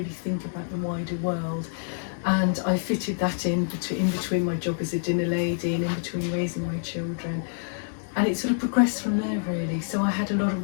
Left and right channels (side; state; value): right; silent; 60 dB below the other